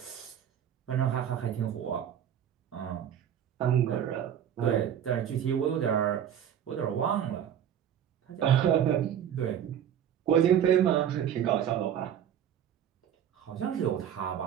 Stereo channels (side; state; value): left; quieter; 9.5 dB